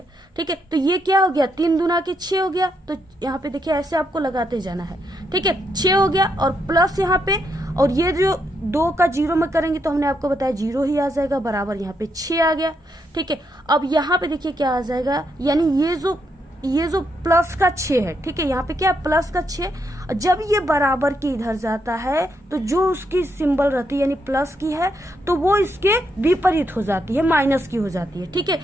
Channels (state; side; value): normal; both; correlation 0.78